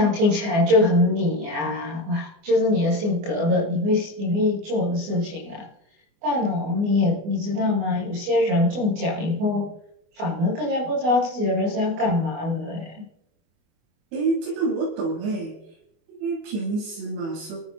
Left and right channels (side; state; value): left; late; 24 ms